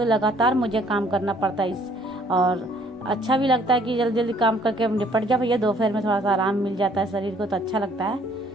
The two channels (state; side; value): normal; both; correlation 0.61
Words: लगातार मुझे काम करना पड़ता है। और अच्छा भी लगता है कि जल्दी जल्दी काम करके निपट जाओ भैया, दोपहर में थोड़ा सा आराम मिल जाता है शरीर को, तो अच्छा लगता है।